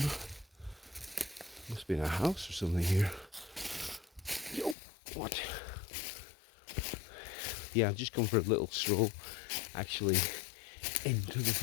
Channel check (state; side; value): drops out; right; at 4.8 s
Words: must be in a house or something here. Yo, what? Yeah, I've just come for a little stroll, actually, into the